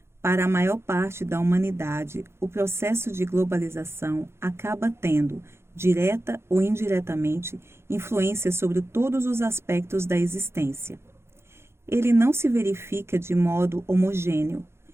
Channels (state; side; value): late; left; 0.12 ms